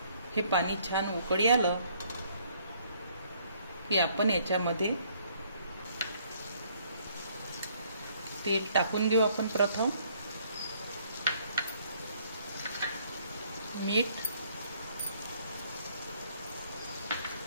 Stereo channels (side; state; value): both; inverted; correlation -0.64